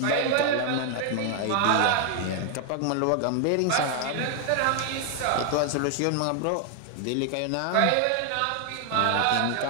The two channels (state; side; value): different; both; correlation 0.00